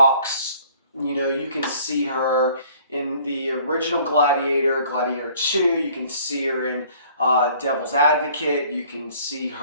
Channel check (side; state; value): both; inverted; correlation -0.55